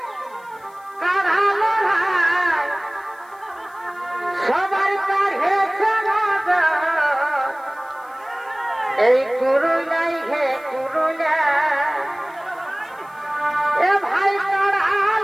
কারালো সবার কাছে নজর এই কুরুলাই হে কুরুলা এ ভাই তারা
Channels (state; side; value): noise; left; hiss, 29 dB below the sound